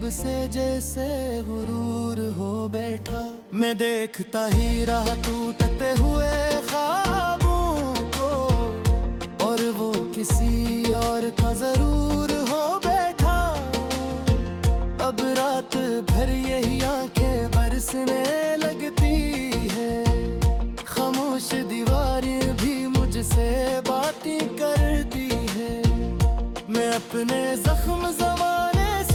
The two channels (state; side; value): identical; both; correlation 1.00